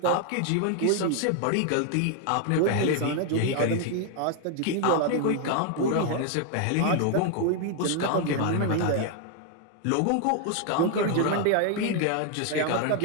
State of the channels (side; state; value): both; different; correlation 0.00